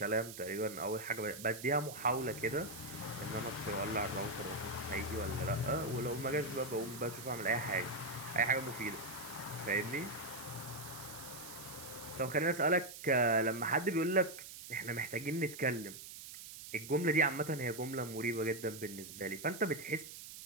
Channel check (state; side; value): noise; right; hiss, 12 dB below the sound